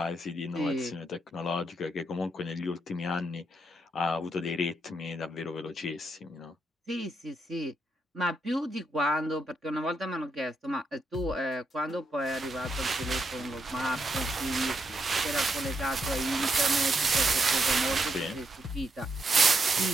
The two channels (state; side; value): normal; both; correlation 0.79